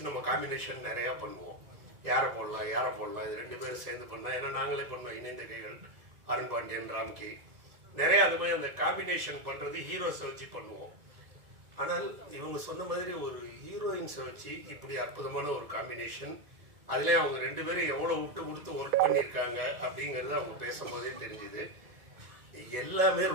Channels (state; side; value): late; left; 1.9 ms